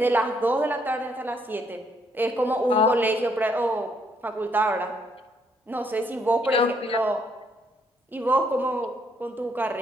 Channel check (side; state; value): both; normal; correlation 0.70